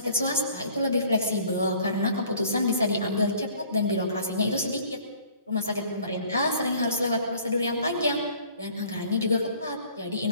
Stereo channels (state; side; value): inverted; both; correlation -0.53